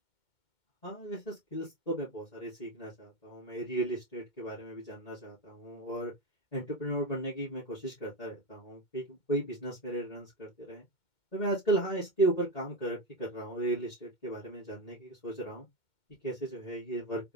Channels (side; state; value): right; late; 2.2 ms